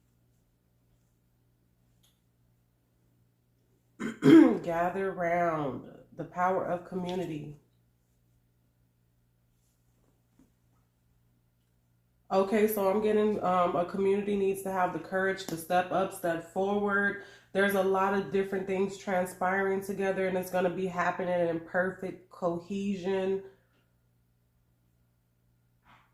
Gather round. The power of community. Okay, so I'm getting a community needs to have the courage to step up, step forward. There's a lot of different things transpiring together, and it's going to be happening in perfect cohesion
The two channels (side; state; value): both; identical; correlation 1.00